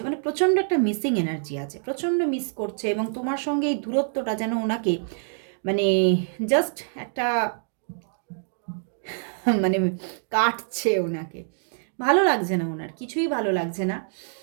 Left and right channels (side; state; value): left; silent; digital silence